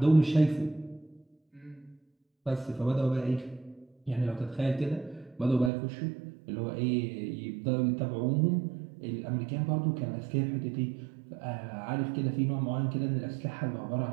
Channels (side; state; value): left; drops out; at 5.7 s